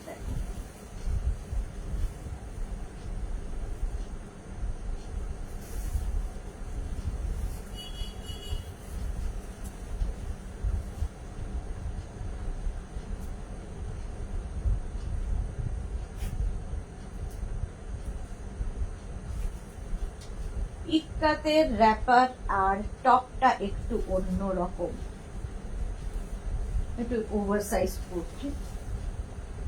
দেখো ইক্কাতের র্যাপার আর টপটা একটু অন্য রকম, একটু ওভারসাইজ করছি।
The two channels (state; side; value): identical; both; correlation 1.00